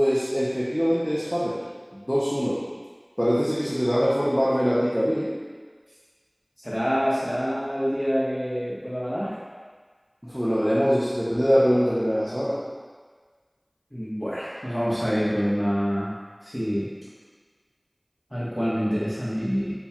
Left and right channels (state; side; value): identical; both; correlation 1.00